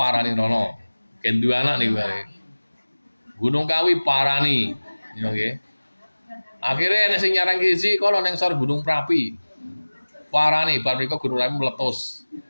rono. Ken duwe anak niku wae. Gunung Kawi parani, nggih. Akhirnya nek sing nyarang siji kono ning sor Gunung Prapi. Parani bar mriko Gunung Prapi meletus.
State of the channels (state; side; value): inverted; both; correlation -1.00